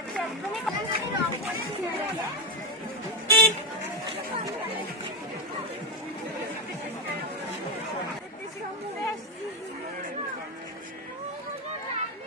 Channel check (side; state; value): both; normal; correlation 0.12